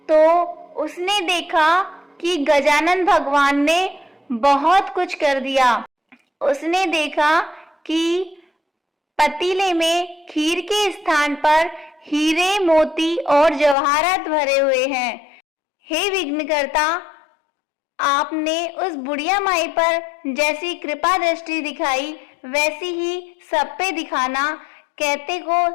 तो उसने देखा कि गजानन भगवान ने बहुत कुछ कर दिया। उसने देखा कि पतीले में खीर के स्थान पर हीरे, मोती और जवाहरात भरे हुए हैं। हे विघ्नकर्ता, आपने उस बुढ़िया माई पर जैसी कृपा दृष्टि दिखाई वैसी ही सब पे दिखाना, कहते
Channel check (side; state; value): right; drops out; at 13.8 s